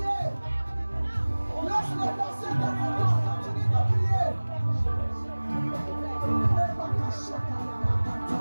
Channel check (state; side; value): inverted; both; correlation -1.00